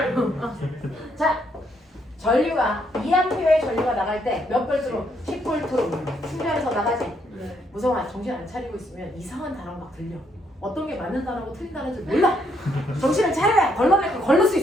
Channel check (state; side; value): normal; both; correlation 0.73